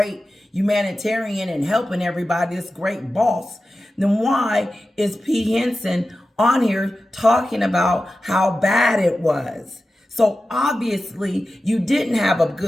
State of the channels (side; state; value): both; normal; correlation 0.93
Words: humanitarian and helping everybody, this great boss, then why is P. Henson on here talking about how bad it was? So obviously you didn't have a